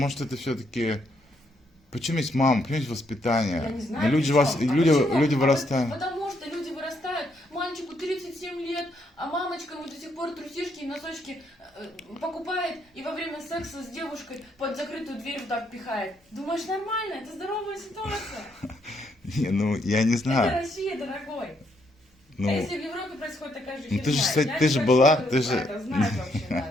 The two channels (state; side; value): normal; both; correlation 0.74